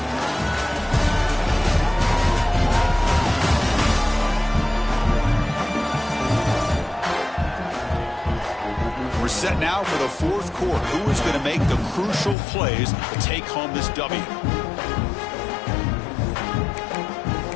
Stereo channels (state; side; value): drops out; right; at 12.4 s